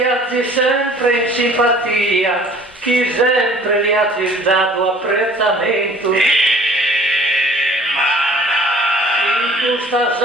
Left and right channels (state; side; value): normal; both; correlation 0.51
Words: sempre in simpatia, chi sempre gli ha dato apprezzamento. In questa